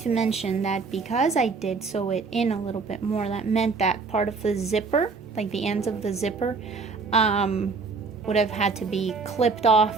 to mention that because I did sew it in a little bit more, that meant that part of the zipper, like the ends of the zipper, would have had to be clipped off,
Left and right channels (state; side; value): quieter; left; 4.6 dB